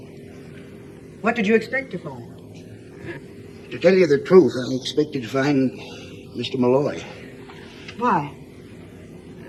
What did you expect to find? To tell you the truth, I expected to find Mr. Malloy. Why?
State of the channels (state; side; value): identical; both; correlation 1.00